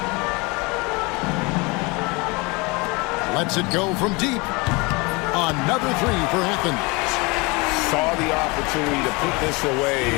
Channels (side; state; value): right; quieter; 26.8 dB